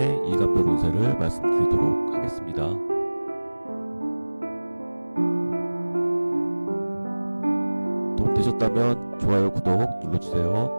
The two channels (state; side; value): inverted; both; correlation -1.00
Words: 일간별 운세를 말씀드리도록 하겠습니다. 도움 되셨다면 좋아요, 구독